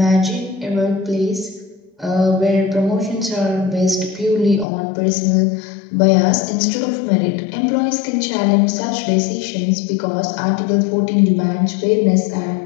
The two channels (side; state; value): right; drops out; at 4.7 s